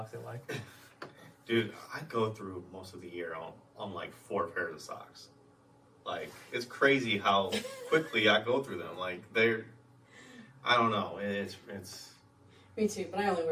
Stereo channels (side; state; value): both; identical; correlation 1.00